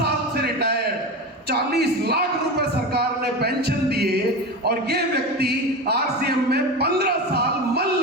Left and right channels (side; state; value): both; normal; correlation 0.24